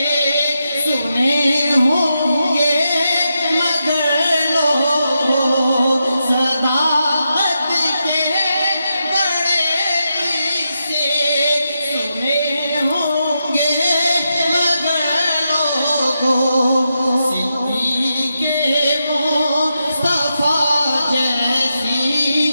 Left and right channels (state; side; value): inverted; both; correlation -0.86